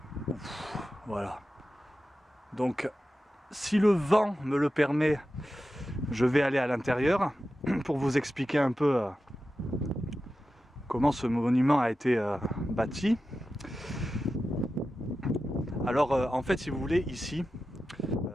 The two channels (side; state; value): both; normal; correlation 0.92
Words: Hein. Voilà. Donc, si le vent me le permet, je vais aller à l'intérieur pour vous expliquer un peu comment ce monument a été bâti. Alors en fait, si vous voulez, ici